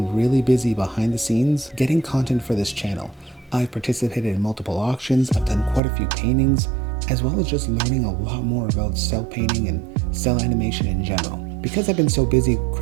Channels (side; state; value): left; drops out; at 5.8 s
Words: really busy behind the scenes getting content for this channel. I've participated in multiple auctions, I've done quite a few paintings, as well as just learning a lot more about cell painting and cell animation in general. Because I've been so busy